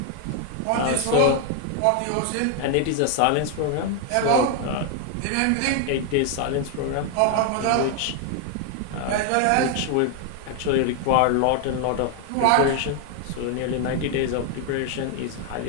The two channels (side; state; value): both; different; correlation 0.01